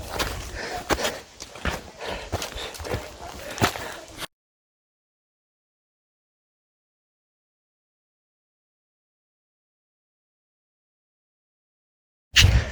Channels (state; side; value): identical; both; correlation 1.00